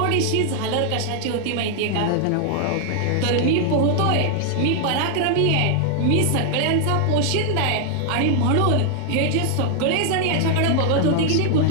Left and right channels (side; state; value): both; different; correlation 0.00